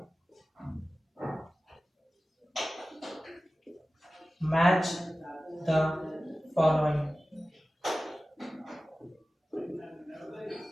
match the following.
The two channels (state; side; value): normal; both; correlation 0.96